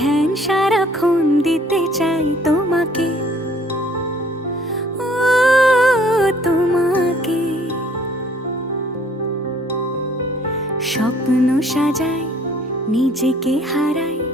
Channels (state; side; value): normal; both; correlation 0.58